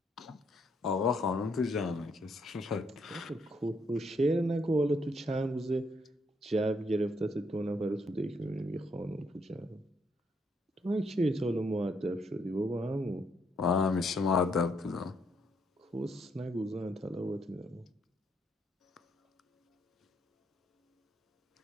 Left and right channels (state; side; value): normal; both; correlation 0.73